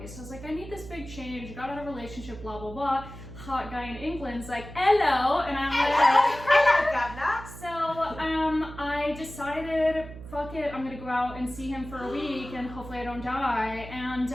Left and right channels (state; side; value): noise; right; hum, 13 dB below the sound